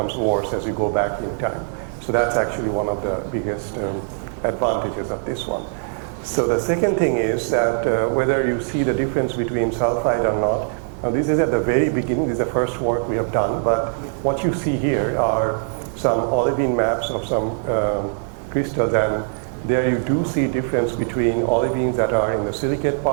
worse as you go back in time. So that's actually one of the biggest advantages of this one. So the second thing is that whether you see the difference between sulfide or not, now this is at the very beginning, this is the first work we have done, but what you see here are some olivine maps of some crystals, and there you do see difference between olivines that are in the silicate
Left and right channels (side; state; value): left; silent; digital silence